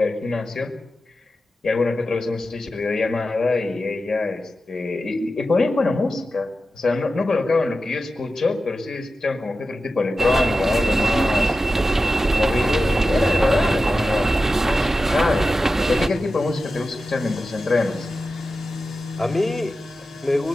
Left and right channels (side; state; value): both; normal; correlation 0.93